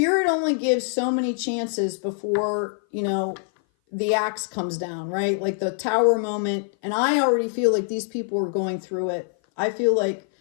only gives so many chances before, you know, the axe comes down, right? Like the tower moment. And I already feel like these people are going through it. I feel like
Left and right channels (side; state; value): right; silent; 57 dB below the other